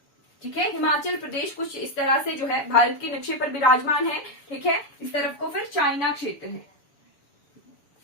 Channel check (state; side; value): late; right; 7.0 ms